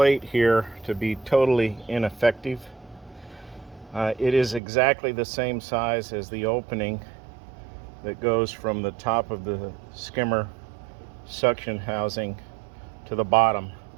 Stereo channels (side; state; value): left; drops out; at 4.6 s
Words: here to be totally ineffective. It is exactly the same size as the opening that goes from the top of the skimmer suction housing to the bottom.